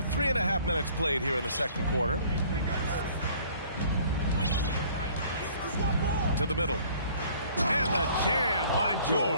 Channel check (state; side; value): inverted; both; correlation -0.54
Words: 3.5 minutes played here in the second quarter. To the middle. And the jam by